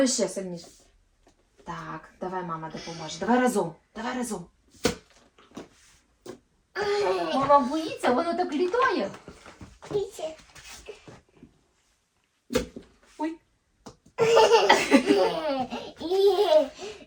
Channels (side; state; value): both; identical; correlation 1.00